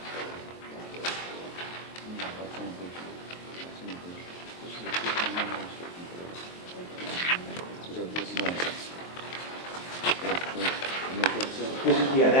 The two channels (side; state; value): right; late; 23 ms